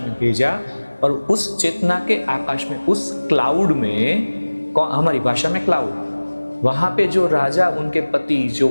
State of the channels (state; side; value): inverted; both; correlation -1.00